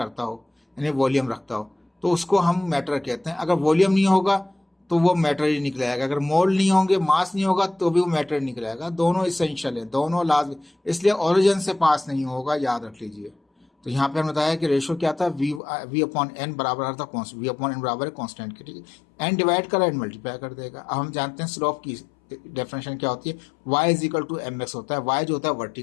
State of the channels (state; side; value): drops out; right; at 15.6 s